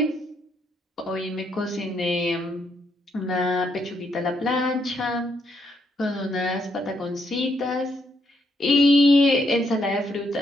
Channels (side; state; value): both; normal; correlation 0.75